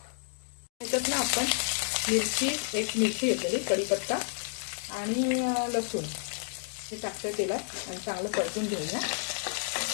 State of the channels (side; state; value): right; silent; 56 dB below the other